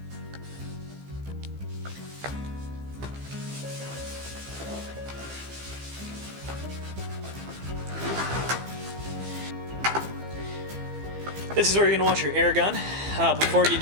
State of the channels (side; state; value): left; late; 15 ms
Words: This is where you're gonna want your air gun. Before you